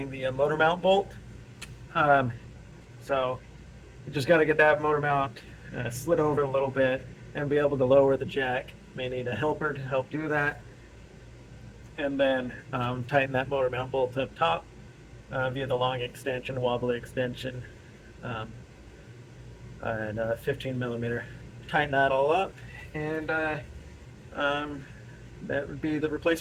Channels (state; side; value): identical; both; correlation 1.00